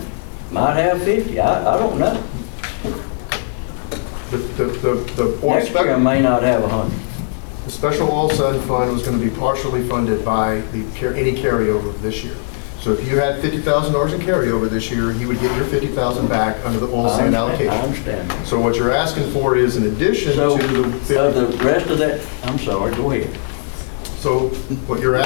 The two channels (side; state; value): right; silent; 63 dB below the other